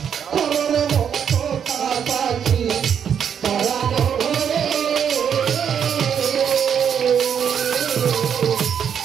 কররে ভক্ত পাখি পরানো ঘরে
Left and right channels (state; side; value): quieter; left; 8.0 dB